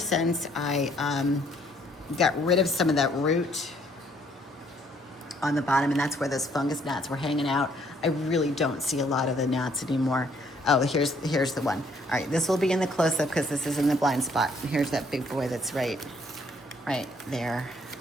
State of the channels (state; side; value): normal; both; correlation 0.65